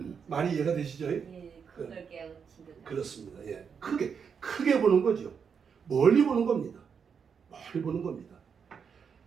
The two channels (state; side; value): quieter; left; 6.6 dB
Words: 많이 이해가 되시죠? 예, 그걸 깨우친 듯. 그렇습니다. 예, 크게 보는 거죠. 멀리 보는 겁니다. 멀리 보는 겁니다.